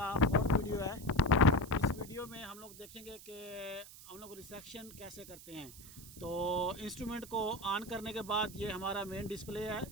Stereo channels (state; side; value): noise; right; hiss, 17 dB below the sound